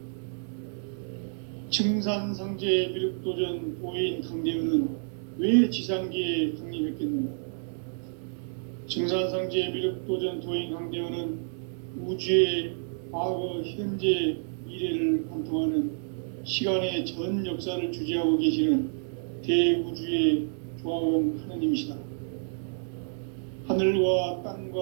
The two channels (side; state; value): left; silent; digital silence